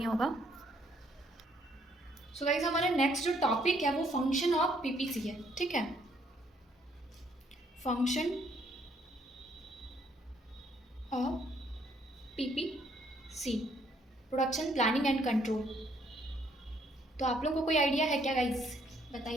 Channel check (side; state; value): both; normal; correlation 0.68